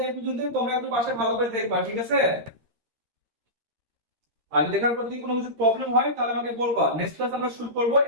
এই পর্যন্তই, তোমরা একটু পাশে ভালো করে দেখবা, ঠিক আছে? আর দেখার পর যদি কোনো কিছু প্রবলেম হয় তাহলে আমাকে বলবা, নেক্সট ক্লাস আমরা শুরু করব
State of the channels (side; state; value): left; late; 13 ms